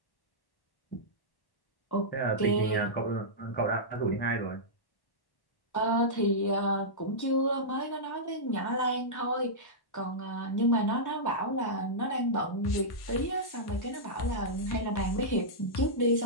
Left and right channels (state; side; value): late; right; 1.1 ms